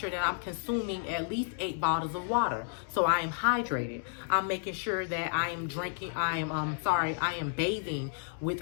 that I'm consuming at least 8 bottles of water, so I am hydrated. I'm making sure that I am bathing with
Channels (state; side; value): silent; right; digital silence